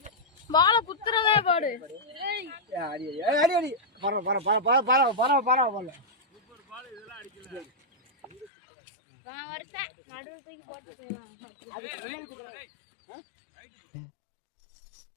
பால குத்துறதே பாரு. அடி அடி அடி பர பர பர பர பர பர பர பர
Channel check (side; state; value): right; drops out; at 8.5 s